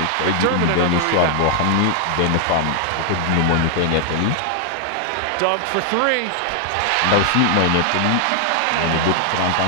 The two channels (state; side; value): different; both; correlation 0.00